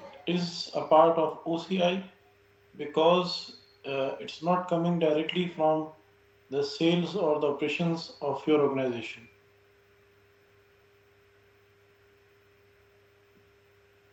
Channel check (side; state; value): both; identical; correlation 1.00